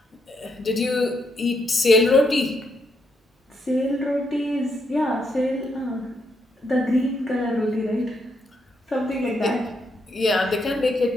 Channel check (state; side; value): normal; both; correlation 0.78